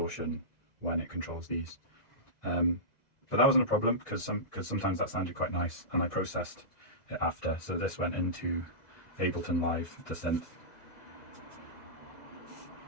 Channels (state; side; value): late; right; 2.0 ms